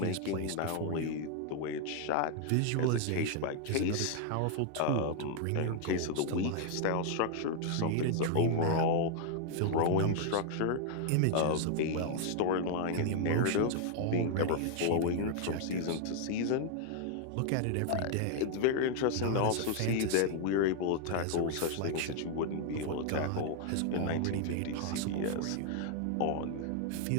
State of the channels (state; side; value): different; both; correlation 0.00